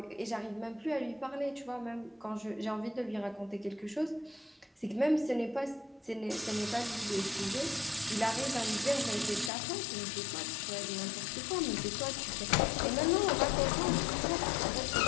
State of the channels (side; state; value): right; drops out; at 9.5 s